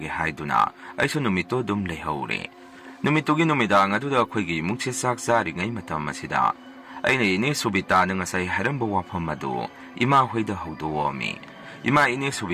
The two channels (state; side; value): identical; both; correlation 1.00